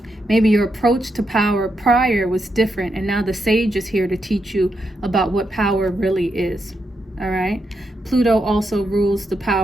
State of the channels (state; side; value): normal; both; correlation 0.83